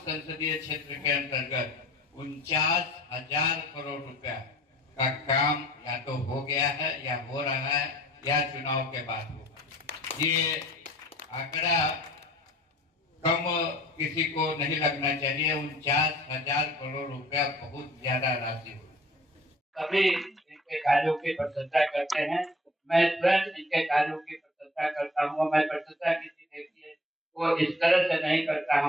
क्षेत्र के अंतर्गत 49,000 करोड़ रुपया का काम या तो हो गया है या हो रहा है या चुनाव के बाद होगा। ये आंकड़ा कम किसी को नहीं लगना चाहिए। 49,000 करोड़ रुपया बहुत ज्यादा राशि हो। सभी इनके कार्यों की प्रशंसा करते हैं। मैं स्वयं इनके कार्यों की प्रशंसा करता हूँ। मैं प्रशंसा किसी व्यक्ति को इस तरह से नहीं करता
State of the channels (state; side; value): normal; both; correlation 0.52